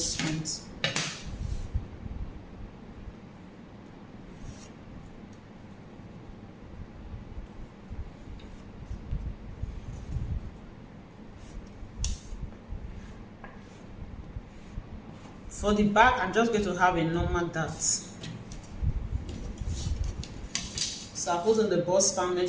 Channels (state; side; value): identical; both; correlation 1.00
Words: point. For the back, I'm just going to have a normal dart. So I put on the bust span